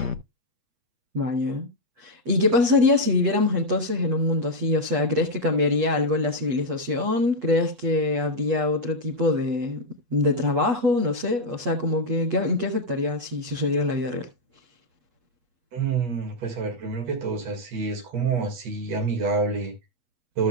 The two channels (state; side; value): late; left; 8.3 ms